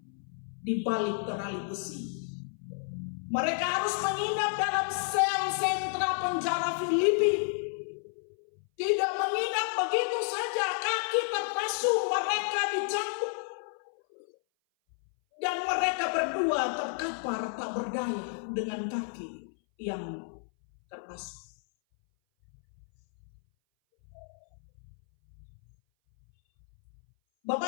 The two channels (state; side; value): silent; right; 57 dB below the other